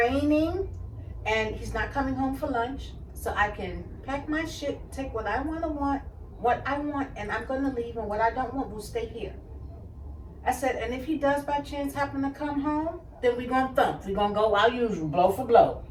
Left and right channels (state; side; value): identical; both; correlation 1.00